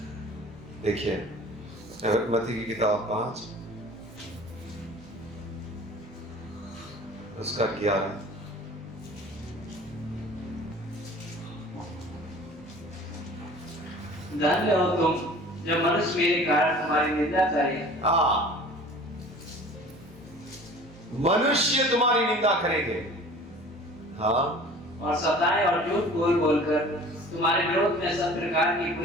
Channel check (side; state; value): both; normal; correlation 0.45